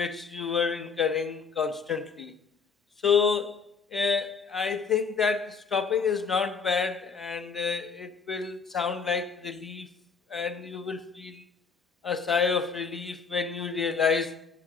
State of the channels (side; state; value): right; quieter; 5.5 dB